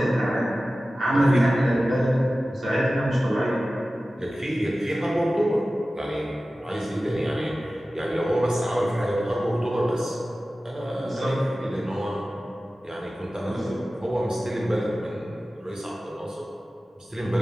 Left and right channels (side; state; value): both; normal; correlation 0.96